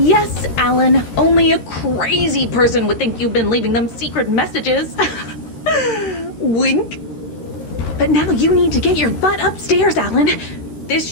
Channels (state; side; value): late; right; 13 ms